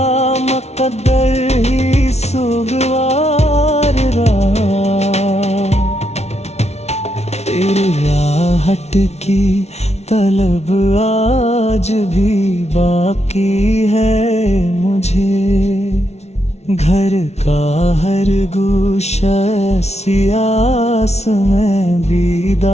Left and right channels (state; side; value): late; right; 0.31 ms